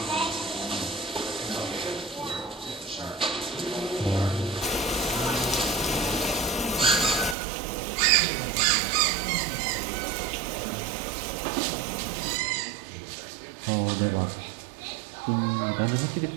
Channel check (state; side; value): drops out; left; at 7.4 s